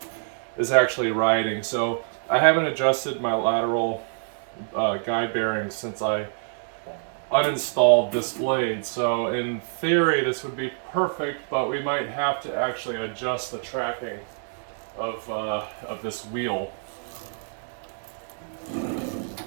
is actually riding. So I haven't adjusted my lateral guide bearings since I uninstalled this blade. So in theory this would be perfect, but we might have to actually adjust the tracking of this wheel.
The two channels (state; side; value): silent; left; digital silence